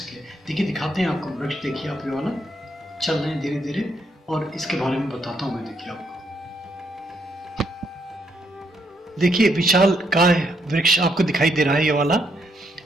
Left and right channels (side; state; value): both; normal; correlation 0.75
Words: देखिए, दिखाते हैं आपको वृक्ष। देखिए आप ये वाला, चल रहे हैं धीरे धीरे, और इसके बारे में बताता हूँ मैं। देखिए आपको, देखिए विशाल काय वृक्ष आपको दिखाई दे रहा है। ये वाला